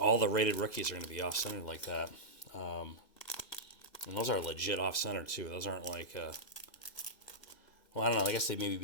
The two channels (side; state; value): right; late; 2.0 ms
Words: the rated rookies are going to be off-centered like that. And those are legit off-center, too. Those aren't like... well, I don't know. I guess they maybe